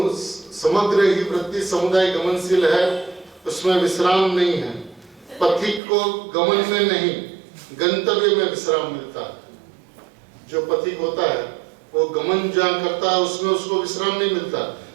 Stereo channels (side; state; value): left; drops out; at 5.8 s